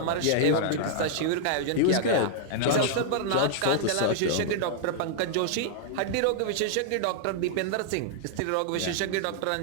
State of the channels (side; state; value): both; different; correlation -0.01